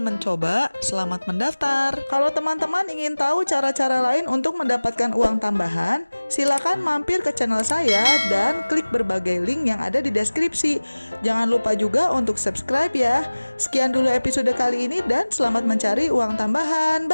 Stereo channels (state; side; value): inverted; both; correlation -1.00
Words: mencoba, selamat mendaftar. Kalau teman-teman ingin tahu cara-cara lain untuk mendapatkan uang tambahan, silakan mampir ke channel saya dan klik berbagai link yang ada di deskripsi. Jangan lupa juga untuk subscribe ya. Sekian dulu episode kali ini dan selamat mencari uang tambahan.